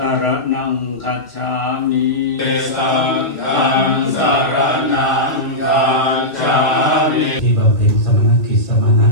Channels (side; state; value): right; late; 1.4 ms